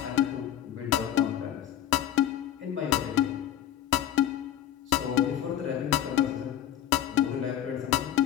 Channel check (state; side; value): quieter; right; 11.1 dB